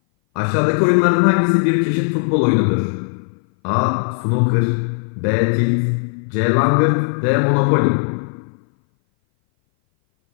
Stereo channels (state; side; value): silent; right; 59 dB below the other